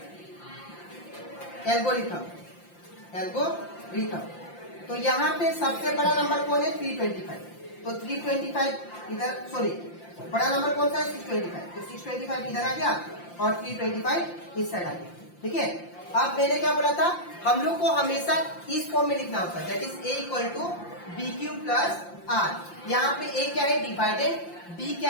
algorithm. तो यहाँ पे सबसे बड़ा नंबर कौन है 325, तो 325 इधर, सॉरी बड़ा नंबर कौन सा है 625, तो 625 इधर आ गया और 325 इस साइड आ गया। ठीक है, अब मैंने क्या बोला था, हम लोग को हमेशा इस फॉर्म में लिखना होता है, that is a equal to B Q plus R. यहाँ पे a क्या है, डिवाइडेड बी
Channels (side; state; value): right; late; 5.8 ms